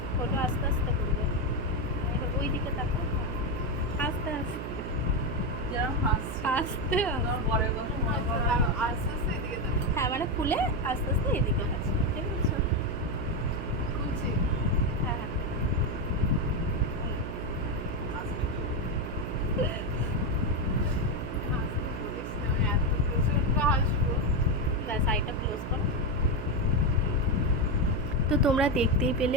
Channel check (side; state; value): right; noise; hum, 6 dB below the sound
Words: করো, আস্তে আস্তে করবে। এবার ওই দিকে তাকাও, আস্তে আস্তে যেরকম হাসছে আস্তে আমার বরের কথা মনে করো। আস্তে আস্তে এদিকে দেখো। হ্যাঁ, মানে খুলে আস্তে আস্তে এদিকে তাকাবে, ঠিক আছে। খুলছি। হ্যাঁ হ্যাঁ, হাসতে বলিস না, আমি এত প্রচন্ড হাসবো। ব্যাস আইটা ক্লোজ কর। তো তোমরা দেখতেই